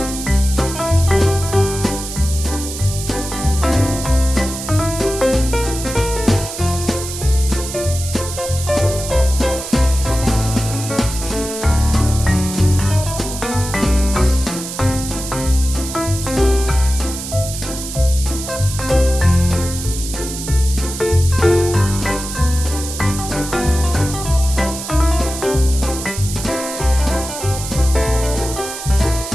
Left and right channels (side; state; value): right; noise; hiss, 8 dB below the sound